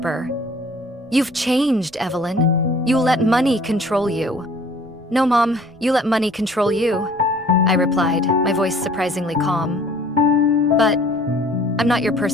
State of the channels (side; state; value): both; normal; correlation 0.53